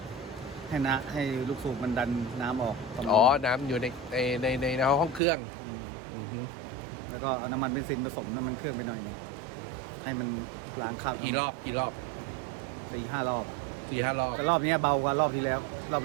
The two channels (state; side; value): drops out; left; at 5.2 s